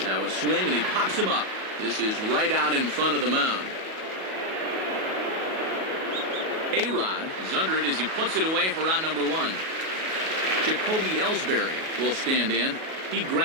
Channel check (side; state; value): left; late; 37 ms